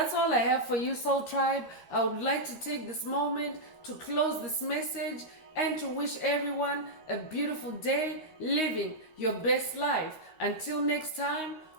all I have for you, Soul Tribe. I would like to take this moment to close this message and to wish everyone a beautiful day living your best life. Until next time,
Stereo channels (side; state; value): right; late; 13 ms